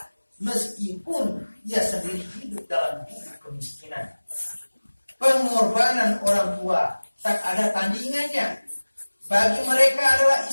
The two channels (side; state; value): both; inverted; correlation -1.00